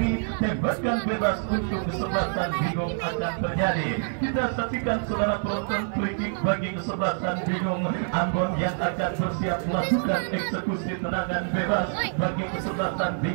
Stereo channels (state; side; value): silent; left; 61 dB below the other